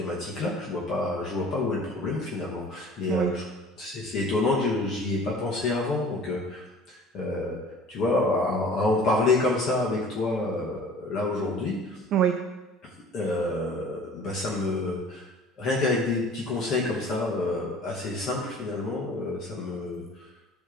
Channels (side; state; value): both; normal; correlation 0.47